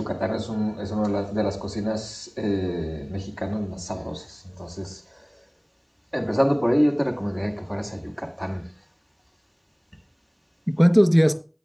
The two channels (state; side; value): identical; both; correlation 1.00